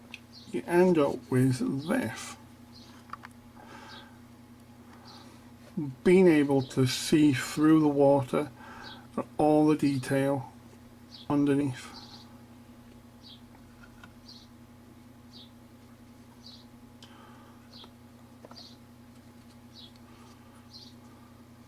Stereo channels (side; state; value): both; identical; correlation 1.00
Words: you end up with this. Being able to see through the water all the detail underneath.